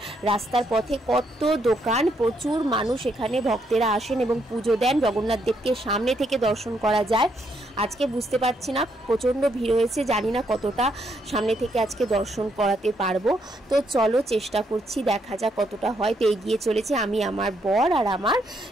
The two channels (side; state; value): both; normal; correlation 0.75